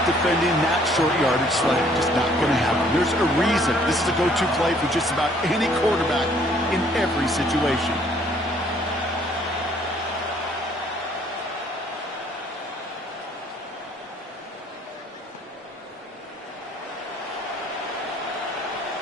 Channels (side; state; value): both; normal; correlation 0.61